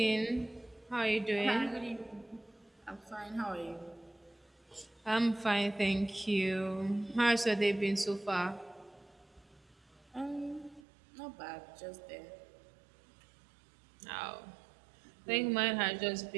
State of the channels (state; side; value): drops out; left; at 10.8 s